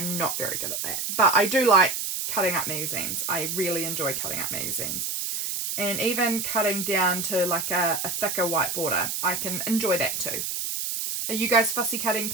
not very good at that, but I do like cutting up magazines. I really enjoy cutting up magazines. And even cutting down to like a thicker white border, I can enjoy that too. Are you guys fussy cutting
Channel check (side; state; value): right; noise; hiss, 2 dB below the sound